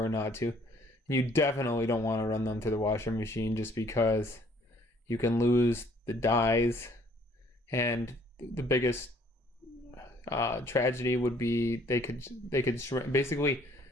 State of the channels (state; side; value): normal; both; correlation 0.60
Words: not to. You definitely don't want to run them through the washing machine, just because you can lose the dyes, and the biggest tragedy would be they could shrink. Basically,